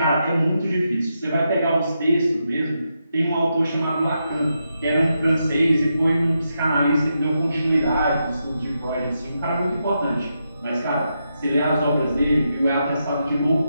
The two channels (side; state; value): both; inverted; correlation -0.84